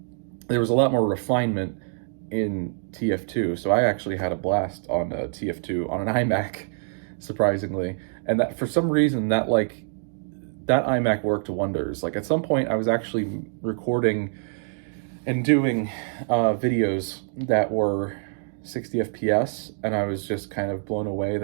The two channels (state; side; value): silent; left; digital silence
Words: there was a lot more refinement in TF2. So I actually had a blast on TF2 on an iMac, surprisingly. And that for some reason that iMac worked wonders. Like at some point I was actually recording and doing videos that were 60 FPS, and I was just kind of blown away